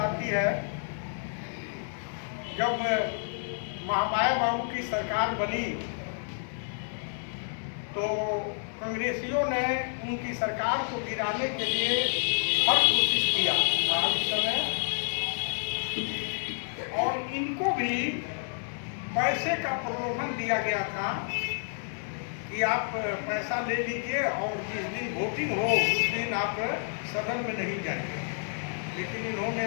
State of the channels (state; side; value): silent; right; 58 dB below the other